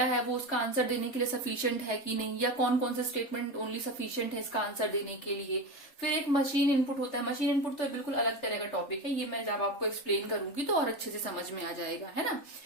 है वो उसका आंसर देने के लिए सफिशिएंट है कि नहीं, या कौन कौन सा स्टेटमेंट ओनली सफिशिएंट है इसका आंसर देने के लिए। फिर एक मशीन इनपुट होता है। मशीन इनपुट तो बिल्कुल अलग तरह का टॉपिक है, ये मैं जब आपको एक्सप्लेन करूंगी तो और अच्छे से समझ में आ जाएगा, है ना।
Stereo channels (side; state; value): right; late; 3.3 ms